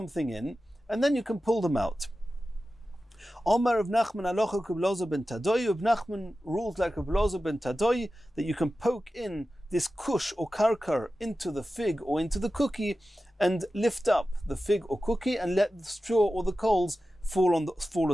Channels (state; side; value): normal; both; correlation 0.94